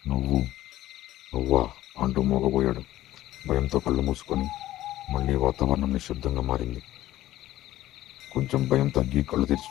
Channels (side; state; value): right; quieter; 14.7 dB